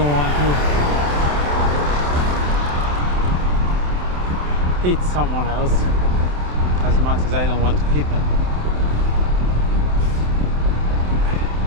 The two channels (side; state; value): left; late; 27 ms